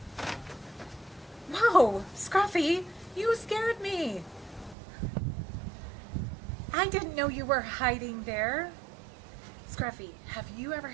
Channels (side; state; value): left; drops out; at 4.8 s